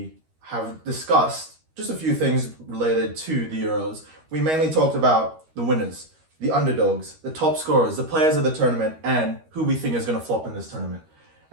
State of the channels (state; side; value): late; left; 13 ms